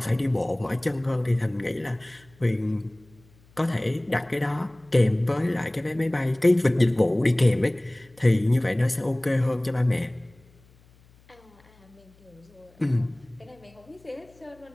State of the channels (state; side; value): noise; left; hum, 29 dB below the sound